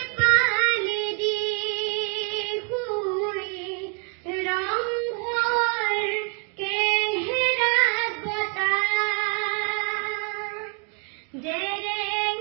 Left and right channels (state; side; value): quieter; left; 37.3 dB